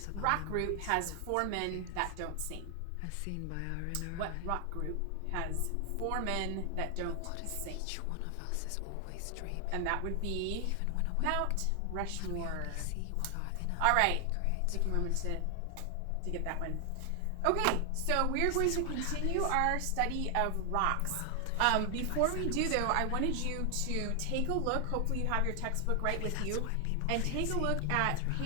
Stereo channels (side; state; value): both; different; correlation 0.00